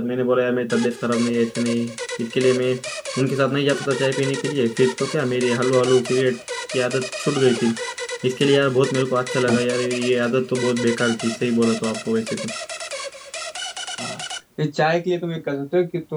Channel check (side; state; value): both; identical; correlation 1.00